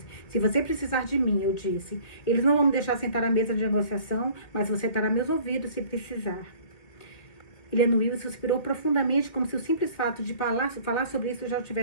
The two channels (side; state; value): right; late; 2.1 ms